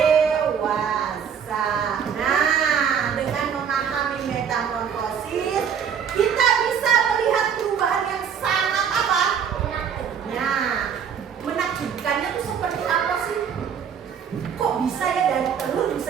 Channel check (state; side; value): quieter; left; 7.5 dB